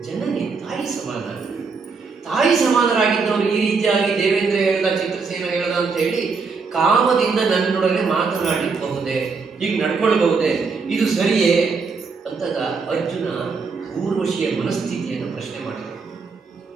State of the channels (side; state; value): left; quieter; 4.8 dB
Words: ಜನನಿ, ತಾಯಿ ಸಮಾನ. ತಾಯಿ ಸಮಾನರಾಗಿದ್ದವರು ಈ ರೀತಿಯಾಗಿ ದೇವೇಂದ್ರ ಹೇಳ್ದ, ಚಿತ್ರಸೇನ ಹೇಳ್ದ ಅಂತ ಹೇಳಿ ಕಾಮದಿಂದ ನನ್ನೊಡನೆ ಮಾತನಾಡಬಹುದೇ, ಹೀಗೆ ನಡ್ಕೊಳ್ಬಹುದೇ, ಇದು ಸರಿಯೇ ಅಂತಗ ಅರ್ಜುನ ಊರ್ವಶಿಯ ಮನಸ್ಥಿತಿಯನ್ನು ಪ್ರಶ್ನೆ ಮಾಡಿದ.